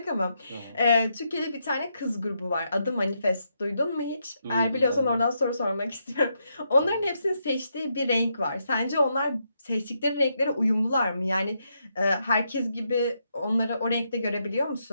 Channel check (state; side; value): inverted; both; correlation -0.80